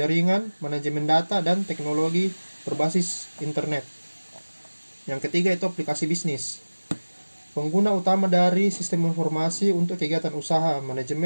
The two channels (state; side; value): inverted; both; correlation -1.00